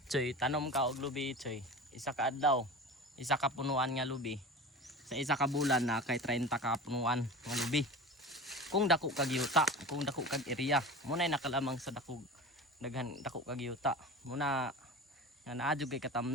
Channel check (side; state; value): both; normal; correlation 0.31